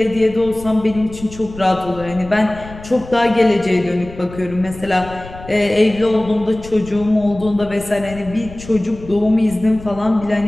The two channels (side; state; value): left; noise; rumble, 16 dB below the sound